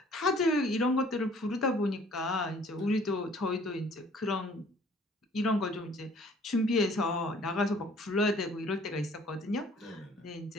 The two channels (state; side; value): normal; both; correlation 0.55